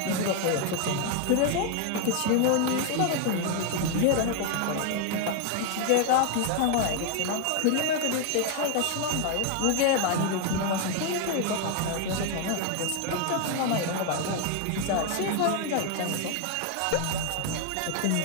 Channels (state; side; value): different; both; correlation 0.00